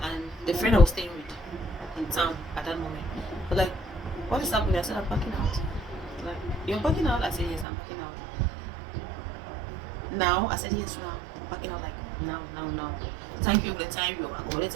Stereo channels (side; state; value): left; drops out; at 7.7 s